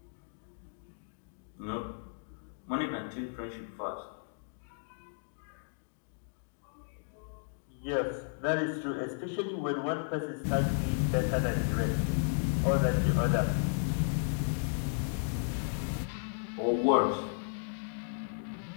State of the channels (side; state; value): right; silent; digital silence